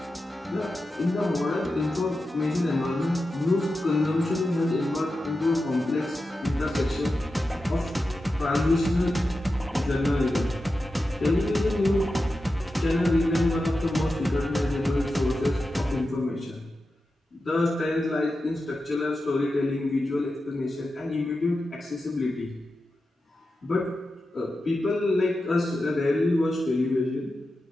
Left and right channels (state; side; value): normal; both; correlation 0.91